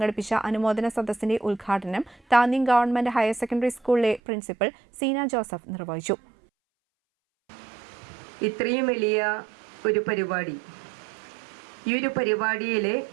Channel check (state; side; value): drops out; left; at 4.2 s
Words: അനുമോദന സദസ്സിന്റെ ഉദ്ഘാടനം താന്യം ഗവൺമെന്റ് ഹയർ സെക്കൻഡറി സ്കൂളിലെ പ്രിൻസിപ്പൽ സീന ജോസഫ് നിർവഹിച്ചു. ഇത്രയും വലിയ ഒരു പരിപാടി, ഈ ഒരു പരിപാടിയിലെ